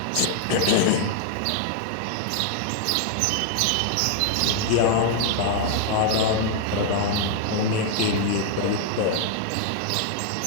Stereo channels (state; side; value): different; both; correlation 0.00